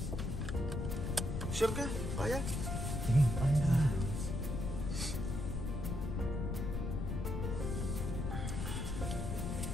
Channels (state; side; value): noise; left; rumble, 2 dB below the sound